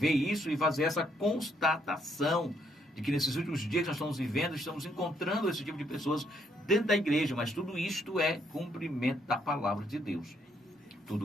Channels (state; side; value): normal; both; correlation 0.71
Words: isso e fazer essa constatação de que nesses últimos dias que nós estamos vivendo, estamos encontrando esse tipo de pessoas dentro da igreja, mas tudo isto é cumprimento da palavra de Deus.